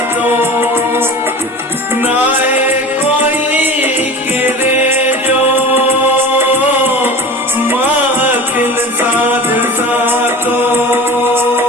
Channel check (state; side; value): normal; both; correlation 0.35